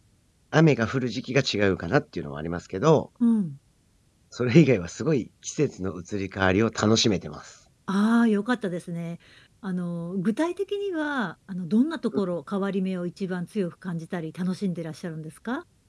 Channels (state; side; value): identical; both; correlation 1.00